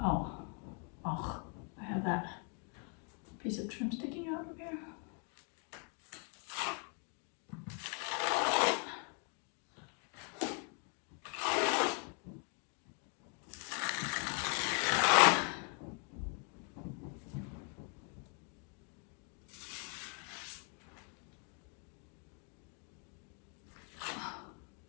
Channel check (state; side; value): quieter; right; 39.8 dB